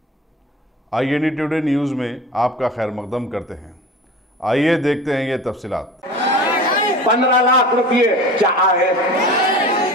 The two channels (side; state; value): both; normal; correlation 0.37